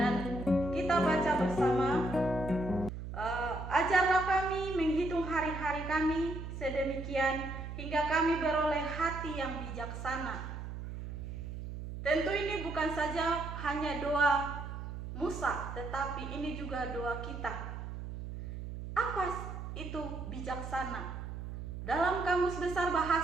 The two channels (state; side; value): noise; right; hum, 8 dB below the sound